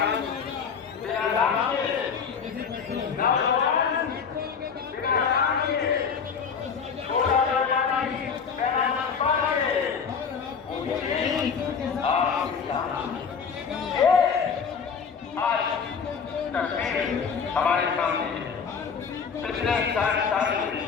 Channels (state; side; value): quieter; right; 6.2 dB